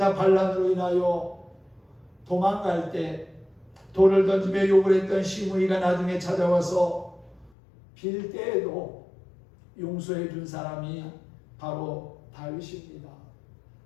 반란으로 인하여 도망갈 때 돌을 던지며 욕을 했던 시므이가 나중에 찾아와서 빌 때에도 용서해 준 사람이 바로 다윗입니다.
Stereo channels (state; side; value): drops out; right; at 7.5 s